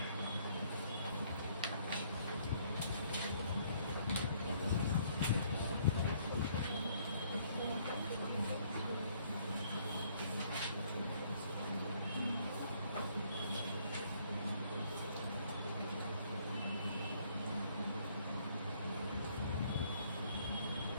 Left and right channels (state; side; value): inverted; both; correlation -0.64